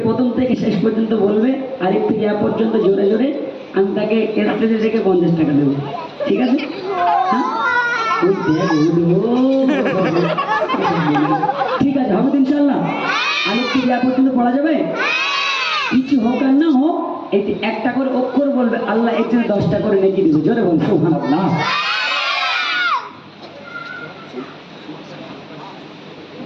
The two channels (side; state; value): both; identical; correlation 1.00